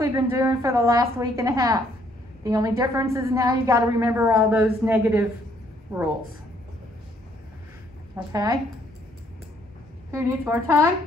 been doing for the last week and a half. The only difference is now you got to remember all those negative rules. Okay? Who needs more time?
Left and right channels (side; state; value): both; normal; correlation 0.66